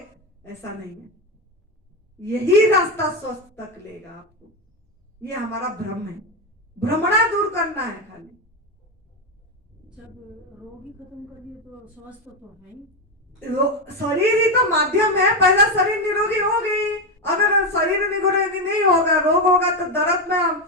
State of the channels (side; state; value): both; normal; correlation 0.10